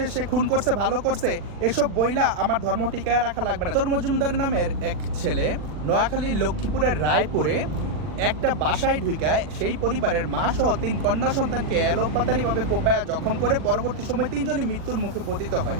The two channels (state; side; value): late; left; 40 ms